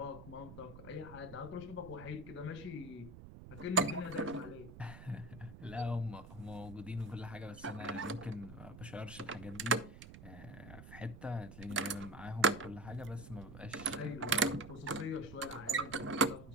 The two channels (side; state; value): right; noise; rumble, 14 dB below the sound